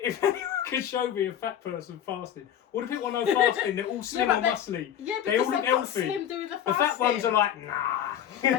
anyone can show me a fat person fasting, all the people I know fasting, they're all slim or muscly. Yeah, they because all look they've got healthy. slim doing the fasting. The fat ones are like, nah. And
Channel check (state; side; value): quieter; right; 10.0 dB